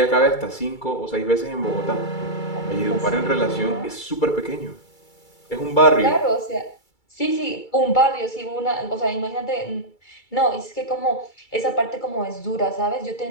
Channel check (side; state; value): right; late; 2.3 ms